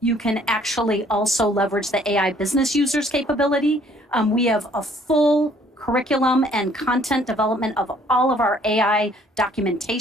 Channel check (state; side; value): normal; both; correlation 0.60